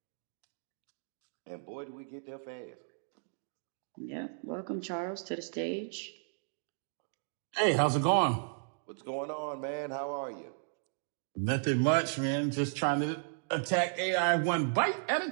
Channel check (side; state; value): left; silent; digital silence